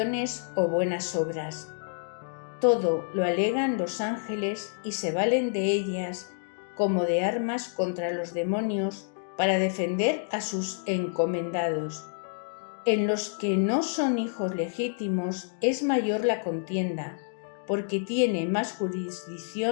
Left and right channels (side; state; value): right; silent; digital silence